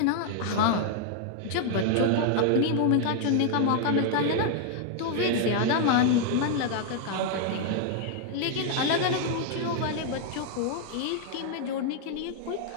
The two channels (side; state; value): both; different; correlation 0.00